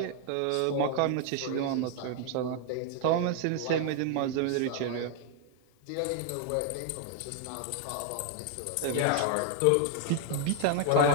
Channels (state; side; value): different; both; correlation 0.00